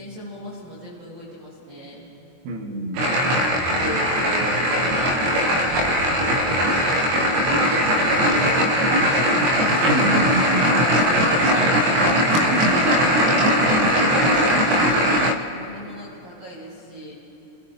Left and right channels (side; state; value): left; late; 23 ms